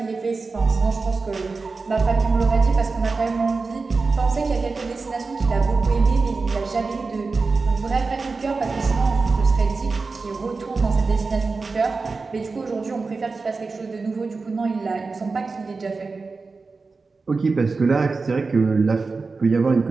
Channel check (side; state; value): left; quieter; 4.1 dB